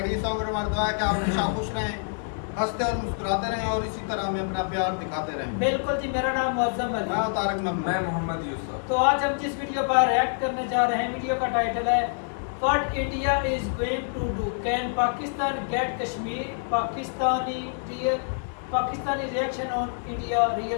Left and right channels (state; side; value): silent; right; digital silence